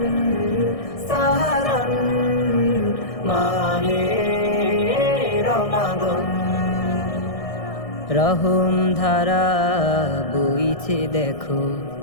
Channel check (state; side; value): late; right; 1.6 ms